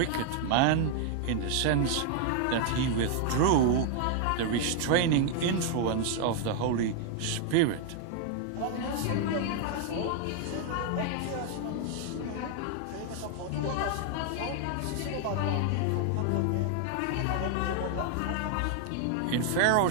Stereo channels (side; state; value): both; different; correlation 0.00